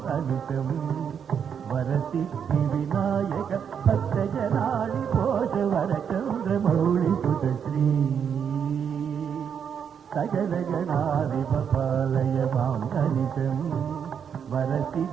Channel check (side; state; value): left; quieter; 7.6 dB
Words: अनिशं वरसिद्धि विनायक भक्तजनानि पोष वरचन्द्रमौळि सुतश्री सकलगणाधिपपालय माम् अनिशं